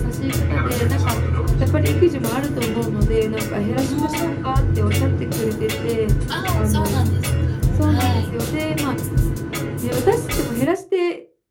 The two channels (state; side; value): identical; both; correlation 1.00